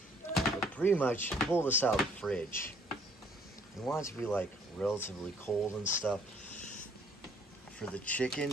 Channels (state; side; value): normal; both; correlation 0.61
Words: But pretty much pull this out of the fridge. You want it to be like relatively cold and stuff. For the